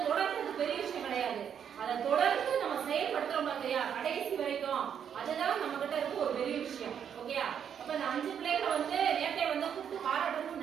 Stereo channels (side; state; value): left; quieter; 8.3 dB